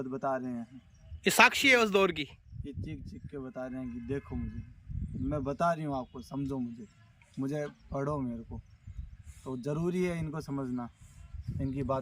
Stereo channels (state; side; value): identical; both; correlation 1.00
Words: बता रहे हैं। ये साक्षी है उस दौर की। ये चीख चीख के बता रहे हैं कि देखो मुझे, मैं बता रही हूँ आपको, समझो मुझे पढ़ो मेरे को। तो ज़रूरी है इनको समझना, इनकी